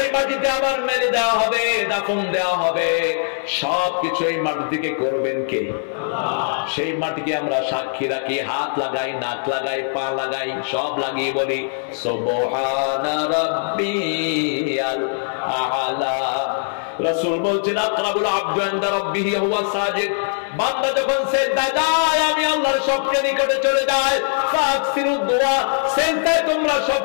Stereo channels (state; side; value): silent; right; digital silence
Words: মাটিতে আবার মেরে দেওয়া হবে, দাফন দেওয়া হবে, সবকিছু এই মাটি থেকে করবেন কে? সেই মাটিকে আমরা সাক্ষী রাখি, হাত লাগাই, নাক লাগাই, পা লাগাই, সব লাগিয়ে বলি সুবহানা রাব্বিয়াল আ'লা। রাসূল বলছেন আকরাবুল আবদু ইনদা রাব্বিহি হুয়া সাজিদ, বান্দা যখন সিজদায় যায় আমি আল্লাহর সবচেয়ে নিকটে চলে যাই। ফাকসিরুদ দুআ, সিজদায় তোমরা